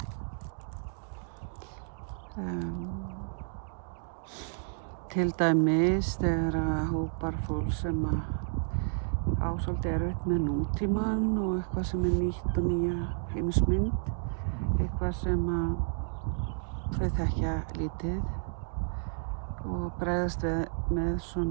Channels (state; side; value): silent; left; 57 dB below the other